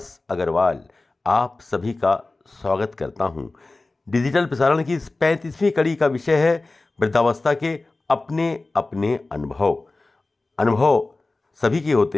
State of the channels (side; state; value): right; quieter; 3.2 dB